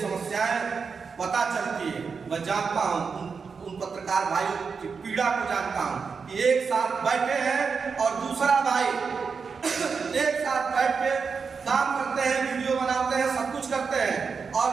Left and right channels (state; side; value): quieter; left; 5.4 dB